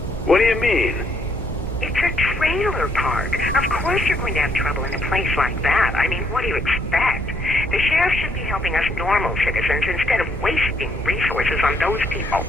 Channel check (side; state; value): both; normal; correlation 0.71